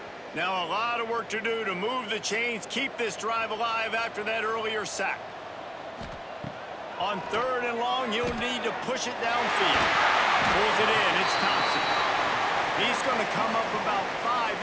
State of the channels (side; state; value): both; identical; correlation 1.00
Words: Now a lot of work to do to move the chains, keep this drive alive after that earlier sack. On 3rd and long, he'll need to push it downfield. Pulls it in. It's Thompson. He's going to come up about 5